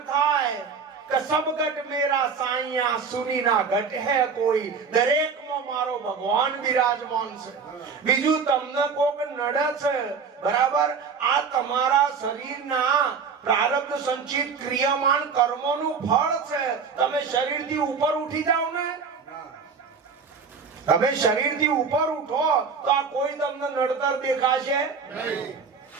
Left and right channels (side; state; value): left; quieter; 5.7 dB